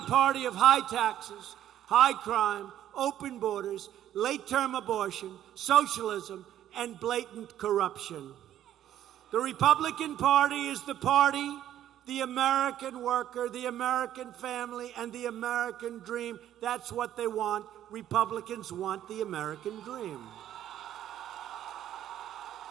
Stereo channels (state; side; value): quieter; left; 11.6 dB